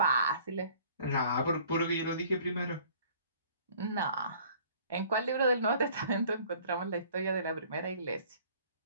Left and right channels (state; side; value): inverted; both; correlation -0.54